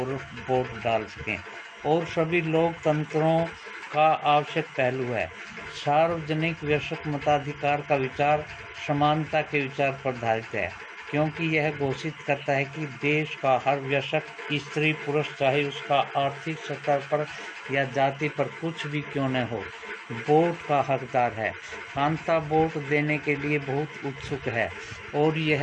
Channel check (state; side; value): identical; both; correlation 1.00